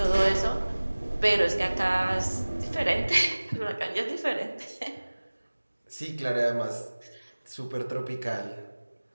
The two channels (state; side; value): inverted; both; correlation -1.00